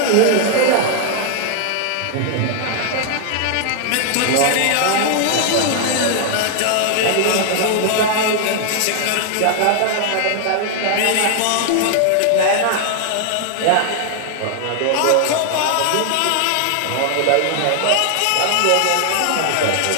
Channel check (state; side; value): different; both; correlation 0.00